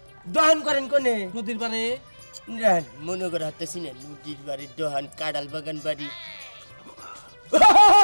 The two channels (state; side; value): inverted; both; correlation -1.00